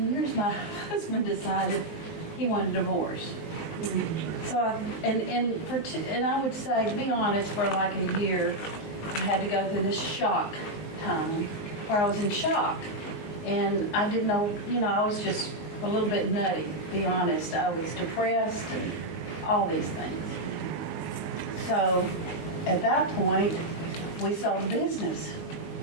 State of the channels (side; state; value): right; late; 19 ms